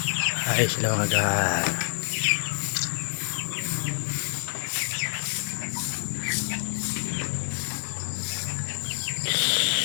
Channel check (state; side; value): silent; right; 60 dB below the other